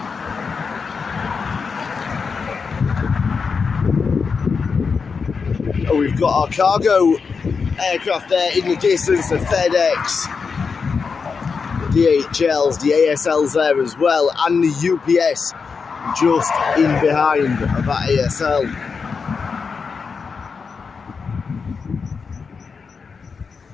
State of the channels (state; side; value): quieter; right; 5.3 dB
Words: Oh, we've got our cargo aircraft there in the distance, the FedEx, the DHLs, the ASLs there as well, and the UPS just in behind that ASL.